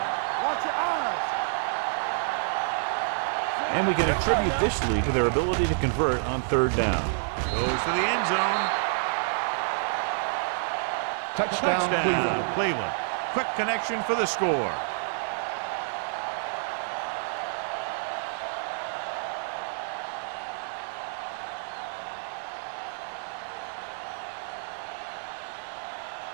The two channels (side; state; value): left; silent; digital silence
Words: Watch your eyes. Watch your man. And we can attribute this lead to their ability to convert on third down. Goes to the end zone. Touchdown, Cleveland. Quick connection for the score.